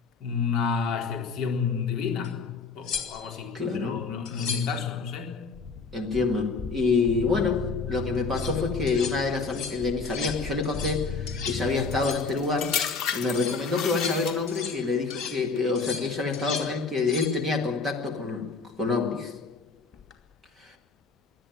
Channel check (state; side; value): quieter; right; 4.4 dB